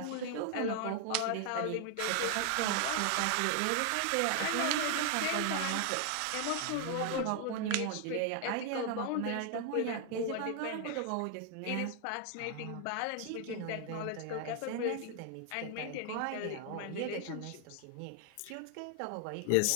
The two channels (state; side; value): different; both; correlation 0.00